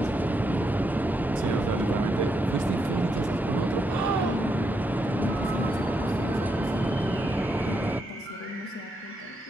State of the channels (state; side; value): normal; both; correlation 0.80